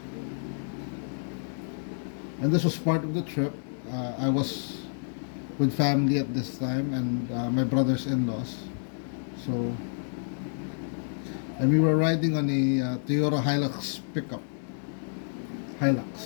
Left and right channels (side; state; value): right; silent; digital silence